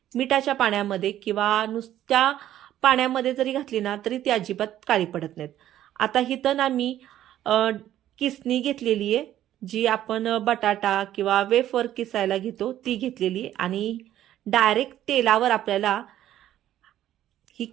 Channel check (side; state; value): left; quieter; 12.3 dB